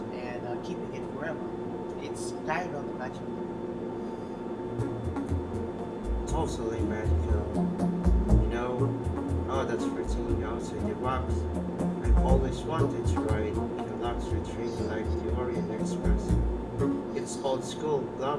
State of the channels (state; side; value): identical; both; correlation 1.00